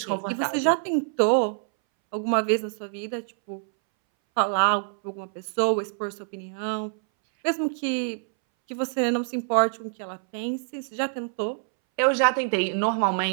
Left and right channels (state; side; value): silent; left; 61 dB below the other